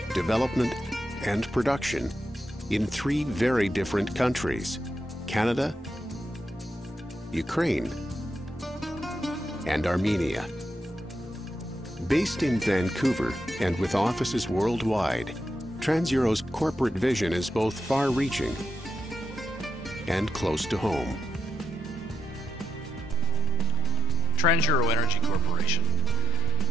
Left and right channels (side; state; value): both; normal; correlation 0.85